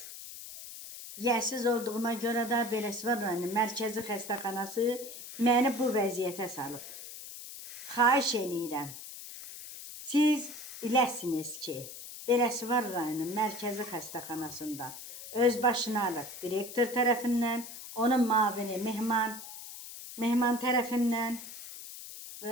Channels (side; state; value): left; noise; hiss, 12 dB below the sound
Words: yəsiz olduğuma görə də Beləsuvar rayonunun mərkəzi xəstəxanası məni bu vəziyyətə salıb. Xahiş eləyirəm, siz biləsiniz ki, Beləsuvar rayonunun mərkəzi xəstəxanasında özbaşınalıq direktor tərəfindən, onun mavini Mehman tərəfindən,